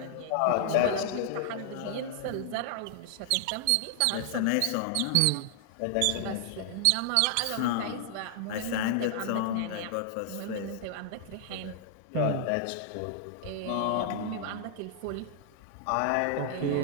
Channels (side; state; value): both; different; correlation -0.01